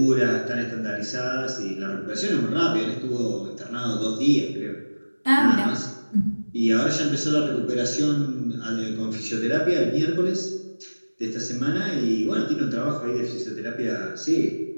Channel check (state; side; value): inverted; both; correlation -1.00